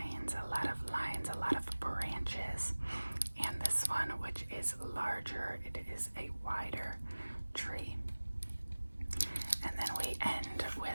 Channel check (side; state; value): both; inverted; correlation -1.00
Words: a lot of branches. And this one, which is larger, it is a wider tree. And then we end